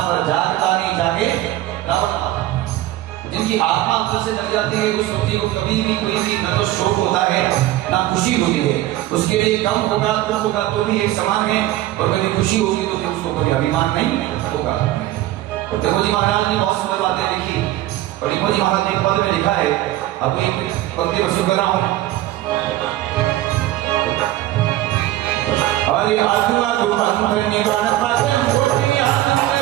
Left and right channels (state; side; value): quieter; left; 15.2 dB